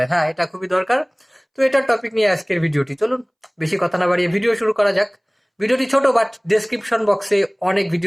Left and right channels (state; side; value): identical; both; correlation 1.00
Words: হ্যাঁ, এটা খুবই দরকার। তো এটার টপিক নিয়ে আজকের ভিডিওটি, চলুন বেশি কথা না বাড়িয়ে ভিডিও শুরু করা যাক। ভিডিওটি ছোট, বাট ডেসক্রিপশন বক্সে অনেক